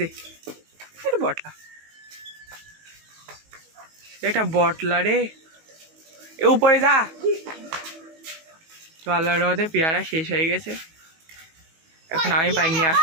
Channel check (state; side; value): late; left; 19 ms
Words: এটা বটলা, এটা বটলা রে, এ উপরে যা। তো আল্লাহর রহমতে পেয়ারা শেষ হয়ে গেছে, এখন আমি পাই নিয়ে